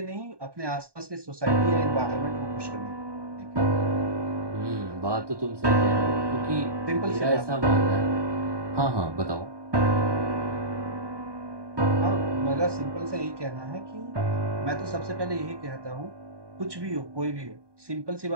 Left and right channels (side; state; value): left; late; 1.2 ms